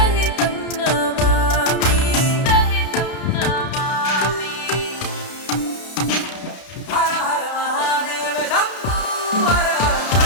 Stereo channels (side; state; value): right; late; 32 ms